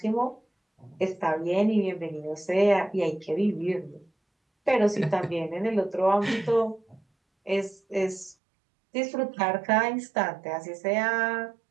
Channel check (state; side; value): drops out; left; at 8.3 s